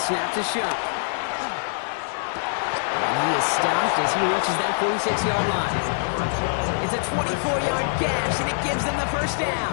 to Shuck. And he is stopped as he reaches that 46-yard line. It's a 24-yard gash, and it gives them the first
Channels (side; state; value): right; silent; digital silence